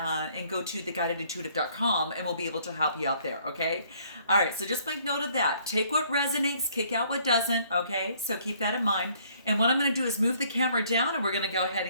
go to theguidedintuitive.com. And we'll be able to help you out there, okay? All right, so just make note of that. Take what resonates, kick out what doesn't, okay? So keep that in mind. And what I'm going to do is move the camera down and we're going to go ahead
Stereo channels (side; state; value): both; inverted; correlation -0.62